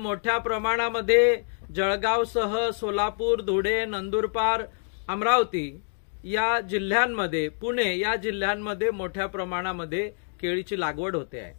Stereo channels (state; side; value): silent; right; 61 dB below the other